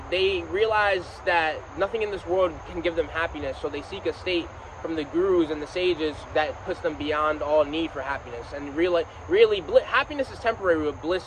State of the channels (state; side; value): identical; both; correlation 1.00